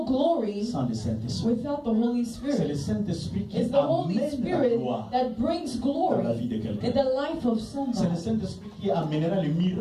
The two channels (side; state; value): both; identical; correlation 1.00